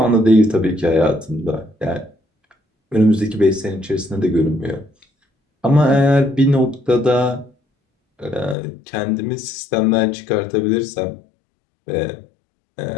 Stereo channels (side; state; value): right; drops out; at 8.6 s